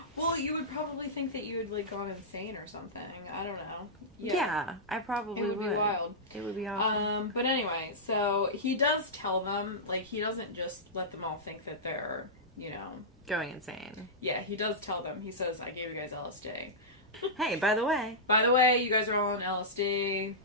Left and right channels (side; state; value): both; normal; correlation -0.13